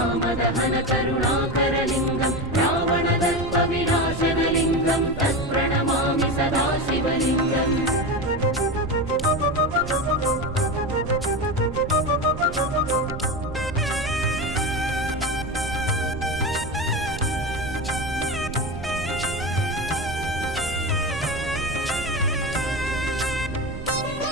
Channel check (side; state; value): right; noise; rumble, 9 dB below the sound